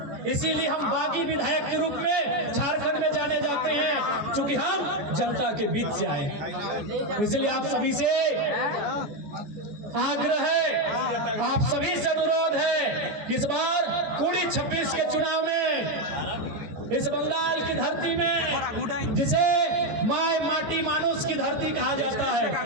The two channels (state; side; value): late; left; 14 ms